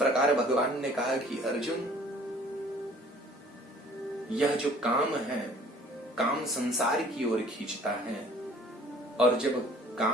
भगवान ने कहा कि अर्जुन, यह जो काम है, काम संसार की ओर खींचता है, और जब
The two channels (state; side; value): normal; both; correlation 0.53